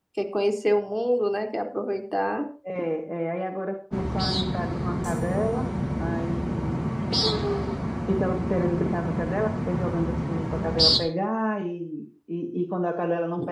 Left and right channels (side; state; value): both; identical; correlation 1.00